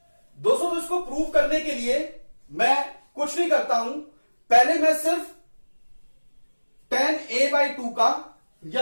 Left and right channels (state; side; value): inverted; both; correlation -1.00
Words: दोस्तों तो इसको प्रूव करने के लिए मैं कुछ नहीं करता हूं, पहले मैं सिर्फ टेन ए बाई टू का